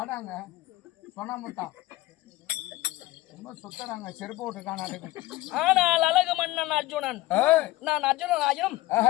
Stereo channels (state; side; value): quieter; right; 17.9 dB